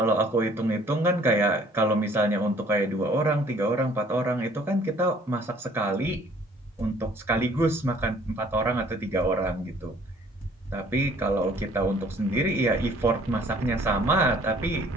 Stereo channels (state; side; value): normal; both; correlation 0.57